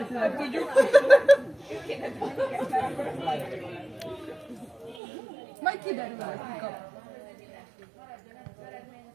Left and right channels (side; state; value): left; drops out; at 5.0 s